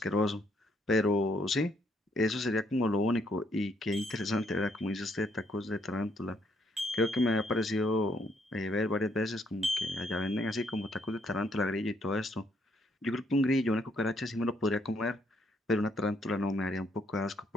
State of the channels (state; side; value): normal; both; correlation 0.71